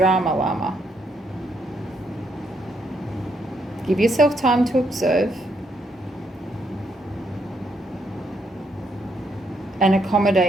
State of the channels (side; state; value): both; normal; correlation 0.75